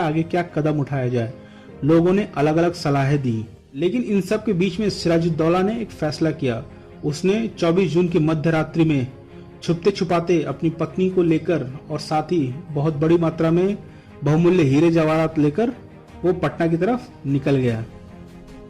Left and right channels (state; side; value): identical; both; correlation 1.00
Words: आगे क्या कदम उठाया जाए। लोगों ने अलग अलग सलाहें दी, लेकिन इन सब के बीच में सिराजुद्दौला ने एक फैसला किया। उसने 24 जून की मध्य रात्रि में छुपते छुपाते अपनी पत्नी को लेकर और साथ ही बहुत बड़ी मात्रा में बहुमूल्य हीरे जवाहरात लेकर वो पटना की तरफ निकल गया।